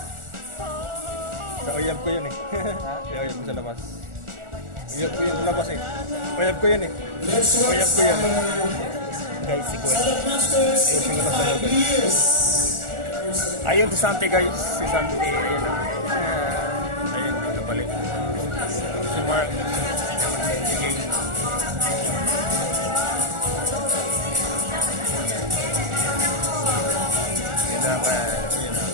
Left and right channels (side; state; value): left; late; 1.4 ms